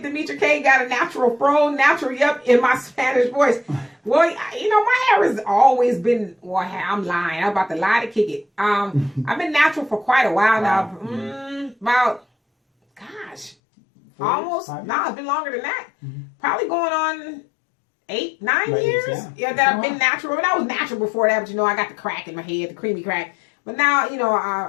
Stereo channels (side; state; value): right; drops out; at 13.6 s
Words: Demetra K got a natural fro, natural yup in my Spanish voice. Well, you know, my hair has always been, well, I'm lying. I'm about to lie to kick it. I've been natural for quite a while now. About, gosh, 4 years, almost, 5 years? no, it's been longer than that. Probably going on 8, 9 Right, years. yeah. That I've been natural. And I was natural before that, but you know, I got the crack in my head, the creamy crack. But now, you know,